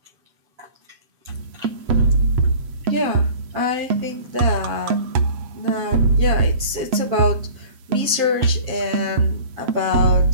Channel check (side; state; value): left; late; 7.7 ms